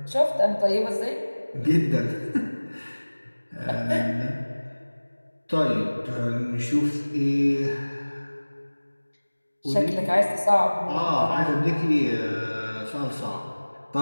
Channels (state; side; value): inverted; both; correlation -1.00